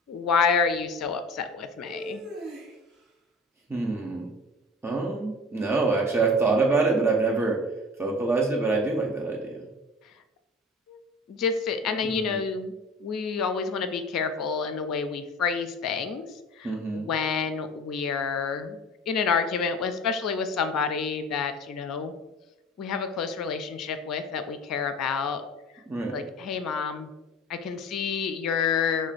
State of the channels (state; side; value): normal; both; correlation 0.39